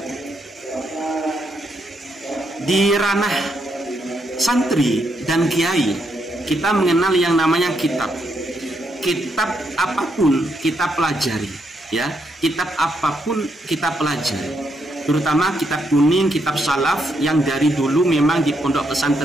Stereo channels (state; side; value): normal; both; correlation 0.78